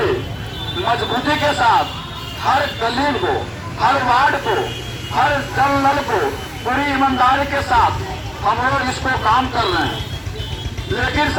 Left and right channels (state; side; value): identical; both; correlation 1.00